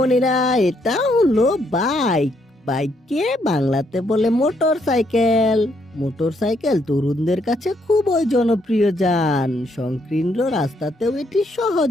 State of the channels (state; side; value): normal; both; correlation 0.73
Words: এটা হলো বাইক। বাইককে বাংলাতে বলে মোটর সাইকেল। মোটর সাইকেল তরুণদের কাছে খুবই জনপ্রিয় যান। সংকীর্ণ রাস্তাতেও এটি